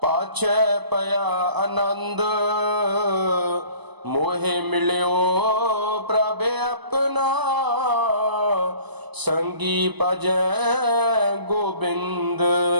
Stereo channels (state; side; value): late; left; 0.99 ms